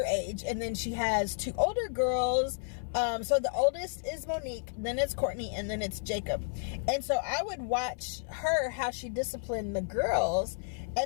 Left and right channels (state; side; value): silent; right; 57 dB below the other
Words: age. And then she has 2 older girls. So the oldest is Monique, then it's Courtney, and then it's Jacob. And so I would watch her, how she disciplined the girls.